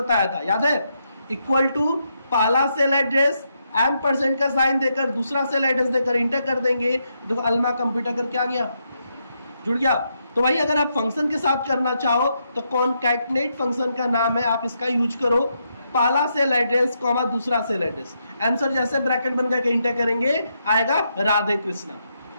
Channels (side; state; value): both; inverted; correlation -0.80